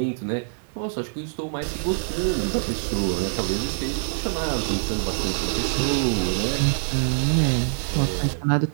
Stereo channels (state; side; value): silent; left; digital silence